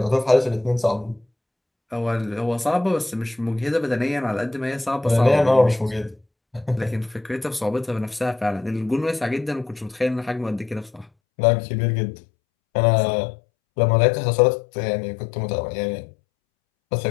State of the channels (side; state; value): right; drops out; at 11.1 s